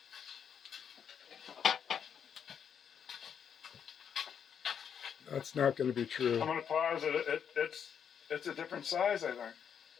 That's not going to be true. I'm going to pause it. It's a different size, I think.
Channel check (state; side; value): quieter; right; 7.8 dB